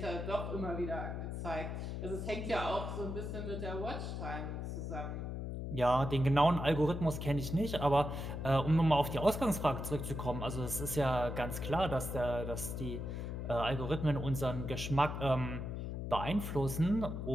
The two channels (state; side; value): noise; left; hum, 4 dB below the sound